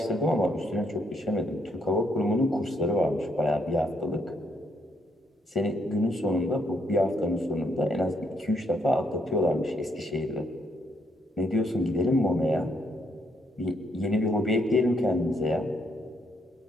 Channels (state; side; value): normal; both; correlation 0.74